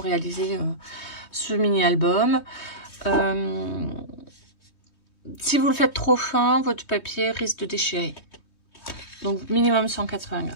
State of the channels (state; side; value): late; right; 3.2 ms